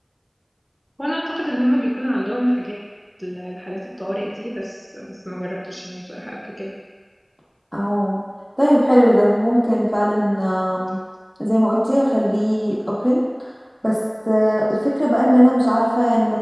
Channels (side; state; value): both; identical; correlation 1.00